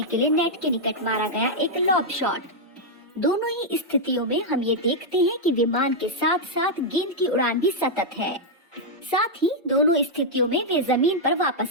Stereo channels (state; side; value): normal; both; correlation -0.03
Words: के लिए नेट के निकट मारा गया एक लॉब शॉट। दोनों ही स्थितियों में हम ये देखते हैं कि विमान के साथ साथ गेंद की उड़ान भी सतत है। साथ ही दोनों स्थितियों में वे जमीन पर